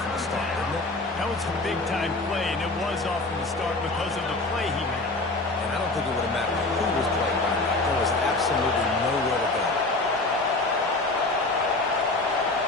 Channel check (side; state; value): right; quieter; 3.1 dB